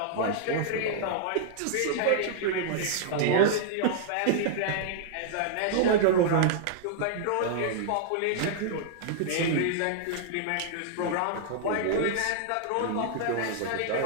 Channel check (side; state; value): both; different; correlation -0.01